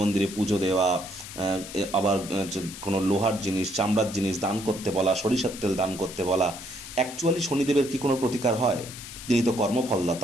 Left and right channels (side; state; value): left; noise; hiss, 12 dB below the sound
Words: মন্দিরে পুজো দেওয়া, আবার কোনো লোহার জিনিস, চামড়ার জিনিস দান করতে বলা, সরিষার তেল দান করতে বলা। অ্যাকচুয়ালি শনিদেবের কি কোনো প্রতিকার হয়? তিনি তো